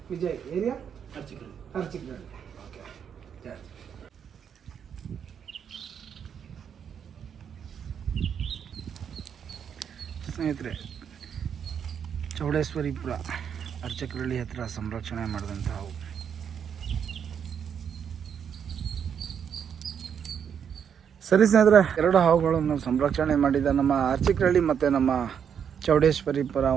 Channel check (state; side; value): quieter; left; 7.8 dB